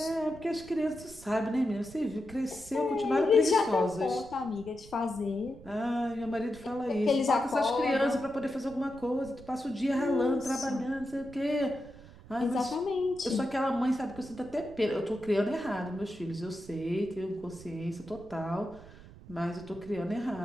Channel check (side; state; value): right; noise; rumble, 19 dB below the sound